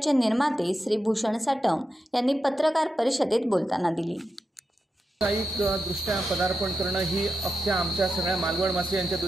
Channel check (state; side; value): normal; both; correlation 0.88